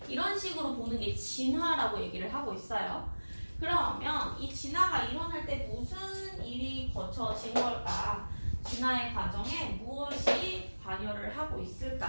이런 식으로 보는 게 진화라고 얘기를 하고 있어요. 그러면 이 진화가 일어날 때 무슨 일이 거쳐진 걸까? 진화의 과정에 무엇이 관여를 하고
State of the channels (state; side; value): inverted; both; correlation -1.00